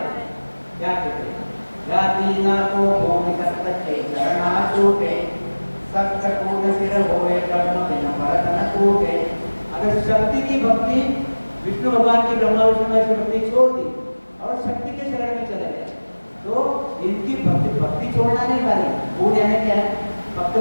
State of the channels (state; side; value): inverted; both; correlation -1.00